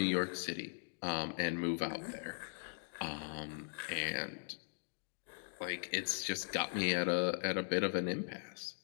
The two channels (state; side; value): silent; right; digital silence